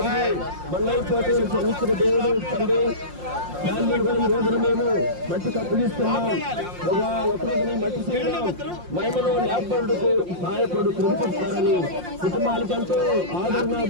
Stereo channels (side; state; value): left; late; 5.6 ms